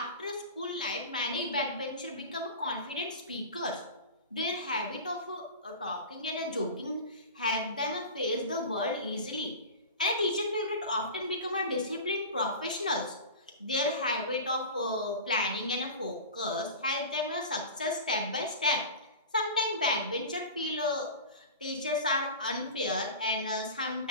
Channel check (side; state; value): both; inverted; correlation -0.32